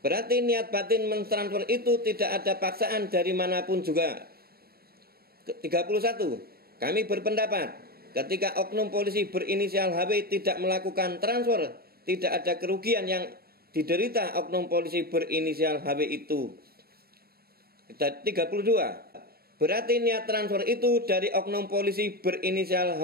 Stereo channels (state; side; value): late; left; 0.45 ms